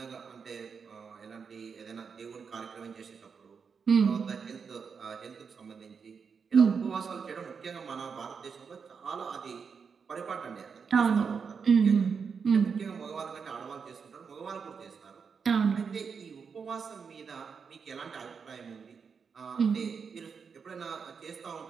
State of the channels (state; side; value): quieter; left; 5.9 dB